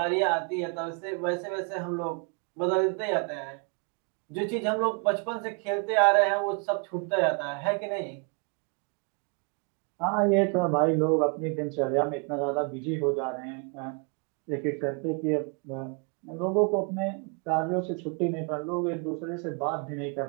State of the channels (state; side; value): quieter; left; 36.2 dB